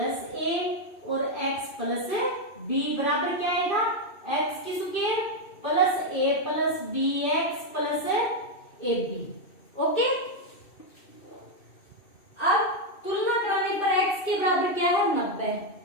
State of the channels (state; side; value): late; right; 2.7 ms